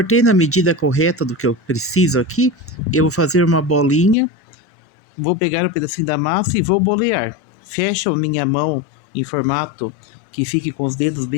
na medida correta do que eu preciso aqui, eu vou fazer uma bolinha. Vou pegar um pedacinho da massa e vou bolear. Fecho a minha mão em formato que fique com os dedos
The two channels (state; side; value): drops out; right; at 4.2 s